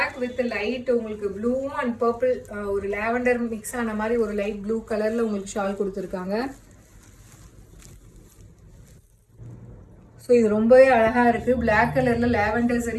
வித் லைட் உங்களுக்கு ப்ளூ அண்ட் பர்பிள் ஒரு லாவெண்டர் மிக்ஸ் ஆன மாதிரி ஒரு லைட் ப்ளூ கலர்ல உங்களுக்கு ஷால் கொடுத்துருக்காங்க. ஸோ இது ரொம்பவே அழகா இருக்கு. பிளாக் கலர்ல லாவெண்டர்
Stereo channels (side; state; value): both; identical; correlation 1.00